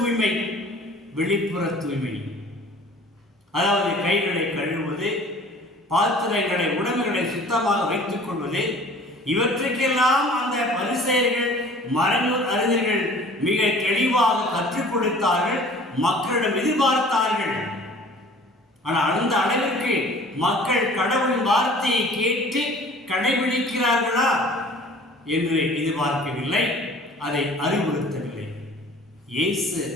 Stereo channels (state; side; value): normal; both; correlation 0.48